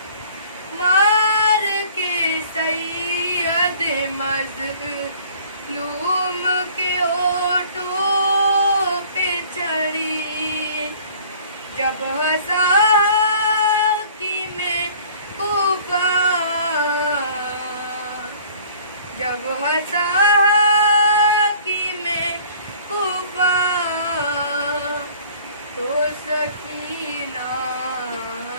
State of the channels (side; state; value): both; inverted; correlation -0.51